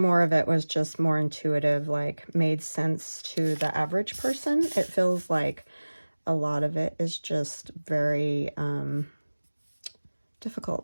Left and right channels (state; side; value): inverted; both; correlation -1.00